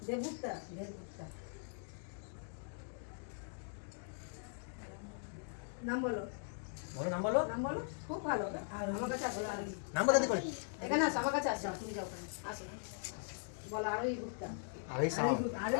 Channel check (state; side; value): silent; right; digital silence